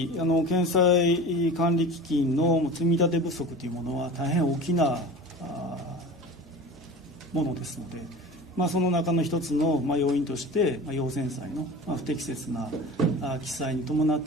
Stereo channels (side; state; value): both; normal; correlation 0.35